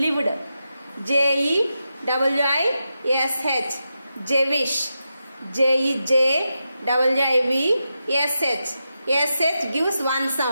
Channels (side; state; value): both; inverted; correlation -0.88